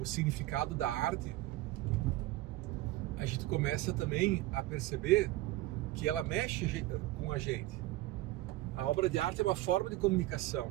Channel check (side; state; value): left; quieter; 17.1 dB